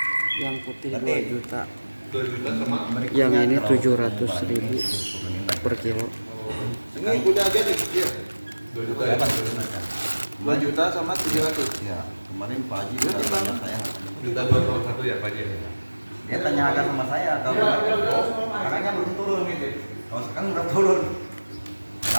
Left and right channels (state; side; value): inverted; both; correlation -1.00